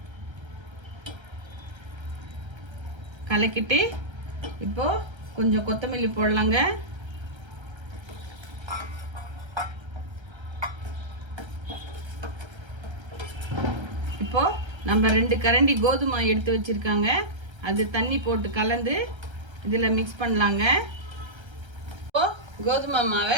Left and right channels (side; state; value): left; late; 1.3 ms